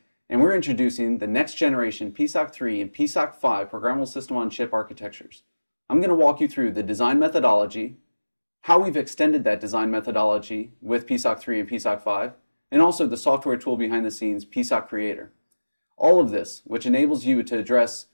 and we're introducing the next generation PSoC 3 and PSoC 5 programmable system-on-chip architectures. I'm going to walk you through the design methodology, how we've extended that design methodology with PSoC 3 and PSoC 5, and also the software tool behind the scenes, PSoC Creator. All of this, which enables you to address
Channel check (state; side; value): inverted; both; correlation -1.00